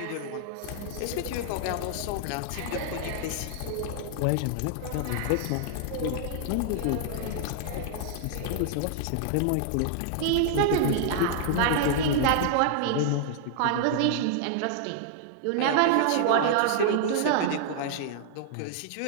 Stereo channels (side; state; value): both; different; correlation -0.01